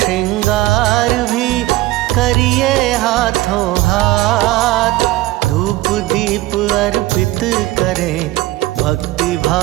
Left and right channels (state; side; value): quieter; left; 17.7 dB